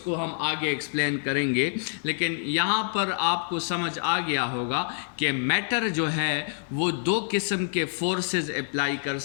کو ہم آگے ایکسپلین کریں گے. لیکن یہاں پر آپ کو سمجھ آ گیا ہوگا کہ میٹر جو ہے وہ دو قسم کے فورسز اپلائی کر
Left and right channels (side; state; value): right; silent; 60 dB below the other